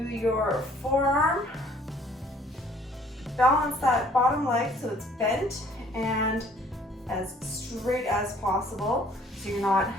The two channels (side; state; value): both; normal; correlation 0.58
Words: forearm. Balance that bottom leg so it's bent and as straight as possible. So